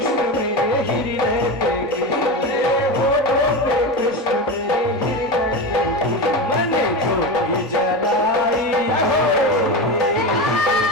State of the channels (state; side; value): normal; both; correlation 0.21